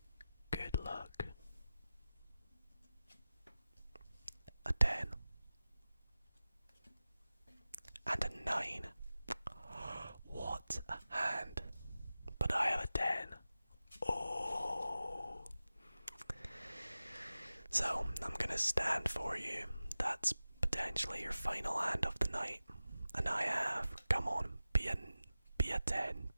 luck. A 10. And a 9. What a hand. But I have a 10. Oh. So, I'm gonna stand for you. That's potentially your final hand of the night. And I have, come on, be a 10,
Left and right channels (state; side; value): inverted; both; correlation -0.95